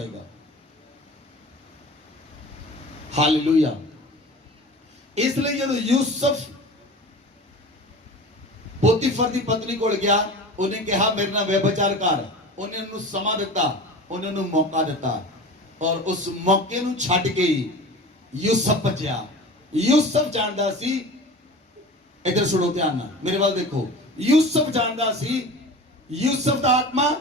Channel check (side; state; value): both; normal; correlation 0.36